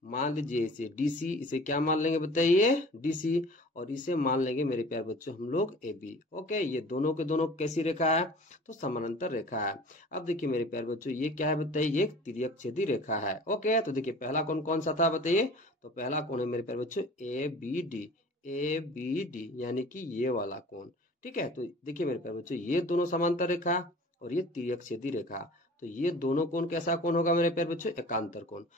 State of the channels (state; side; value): normal; both; correlation 0.44